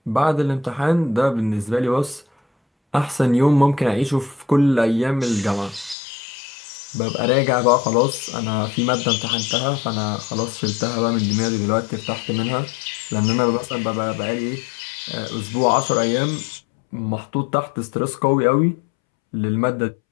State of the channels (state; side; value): drops out; right; at 6.0 s